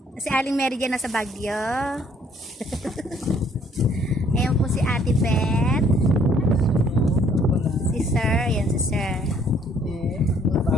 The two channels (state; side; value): normal; both; correlation 0.62